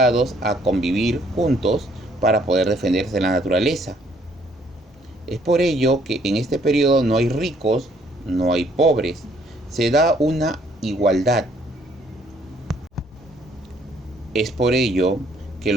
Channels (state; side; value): normal; both; correlation 0.64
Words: a convivir juntos para poder defenderse de la naturaleza. Es por ello que en este periodo no hay ricos, no hay pobres. Se da una igualdad. Es por ello que